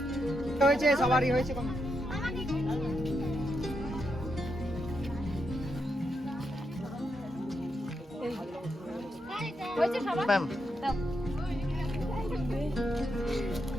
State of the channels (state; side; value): normal; both; correlation 0.82